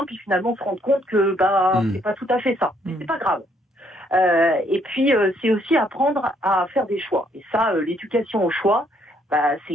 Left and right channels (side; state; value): both; normal; correlation 0.69